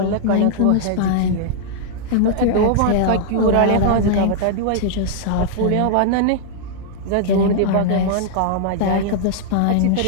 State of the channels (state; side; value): different; both; correlation -0.01